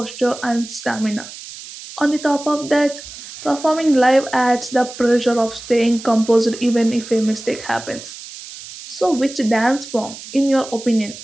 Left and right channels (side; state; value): right; noise; hiss, 14 dB below the sound